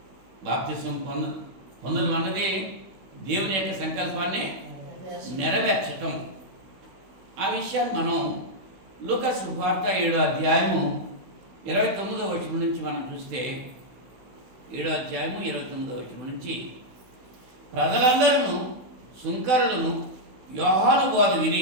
బాప్తిస్మం పొందడం అన్నది దేవుని యొక్క సంకల్పాన్ని నెరవేర్చటం. ఆ విషయాన్ని మనం లూకా సువార్త 7వ అధ్యాయము 29వ వచనం నుంచి మనం చూస్తే, 7వ అధ్యాయము 29వ వచనం నుంచి, ప్రజలందరూ సుంకరులను యోహాను బోధ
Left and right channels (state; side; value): late; left; 16 ms